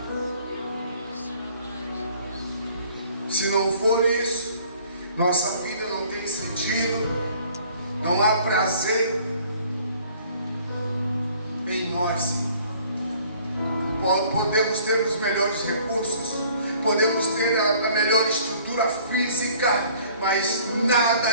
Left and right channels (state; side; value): inverted; both; correlation -0.55